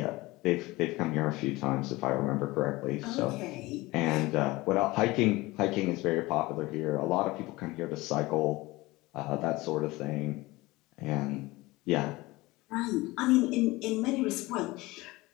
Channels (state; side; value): quieter; right; 20.8 dB